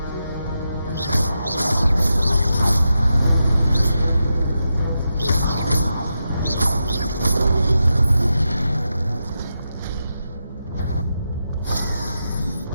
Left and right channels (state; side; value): inverted; both; correlation -0.87